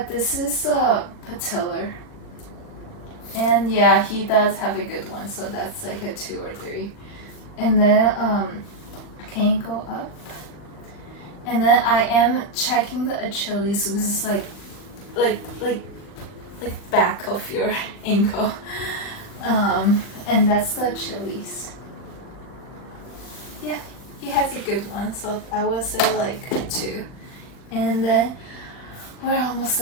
this is patellar. And yeah, he does have a good one, so that's like a 2 or 3. And then can you go up? And then I am checking the Achilles, which is like back of your ankle. And that's the Achilles. Yeah, he has a good one, so I would say like 2. And then we're almost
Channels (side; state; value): right; late; 39 ms